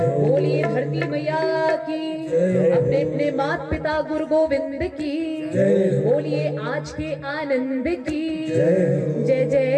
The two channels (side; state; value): both; identical; correlation 1.00